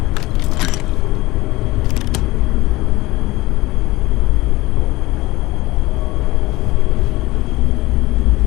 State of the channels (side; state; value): right; quieter; 19.5 dB